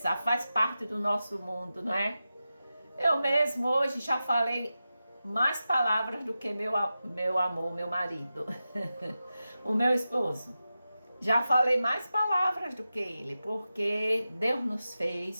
faz parte do nosso mundo, não é? Eu mesmo hoje já falei mais palavras do que meu amor, meu marido, o meu esposo. Já falei mais palavras do que ele, porque Deus nos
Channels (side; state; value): both; inverted; correlation -0.93